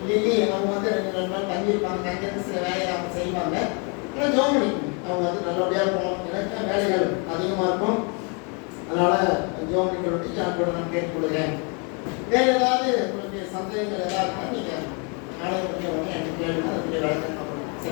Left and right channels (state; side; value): quieter; right; 34.8 dB